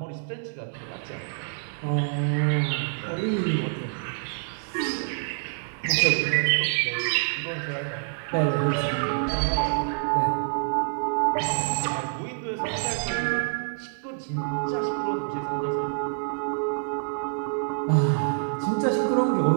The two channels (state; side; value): silent; left; digital silence